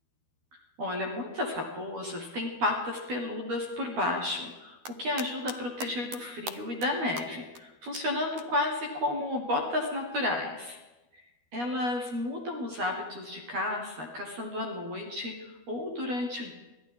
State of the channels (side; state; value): left; late; 12 ms